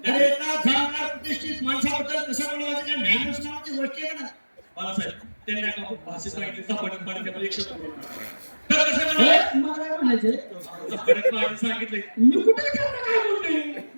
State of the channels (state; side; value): inverted; both; correlation -1.00